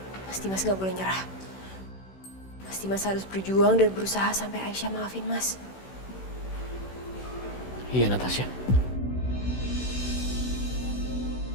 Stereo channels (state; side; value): late; right; 16 ms